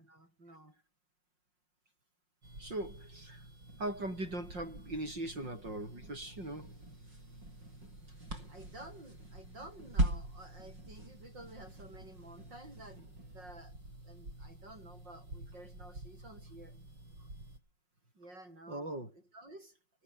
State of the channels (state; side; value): late; left; 5.5 ms